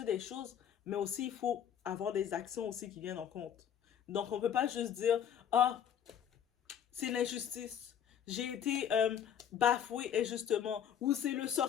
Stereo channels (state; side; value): quieter; right; 9.0 dB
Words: des choses, mais aussi il faut avoir des actions aussi qui viennent en compte. Donc on ne peut pas juste dire, ah, c'est l'injustice. J'ai été bafoué injustement. Ou c'est le